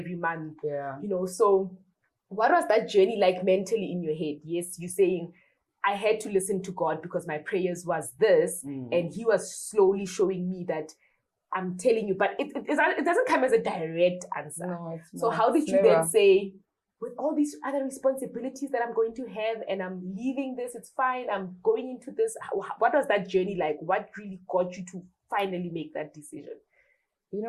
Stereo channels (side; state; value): both; identical; correlation 1.00